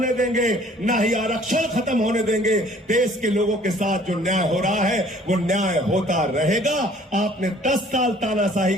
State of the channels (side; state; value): both; normal; correlation 0.55